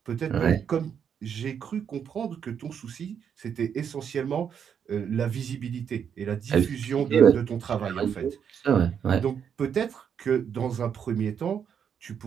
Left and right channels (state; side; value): quieter; left; 7.8 dB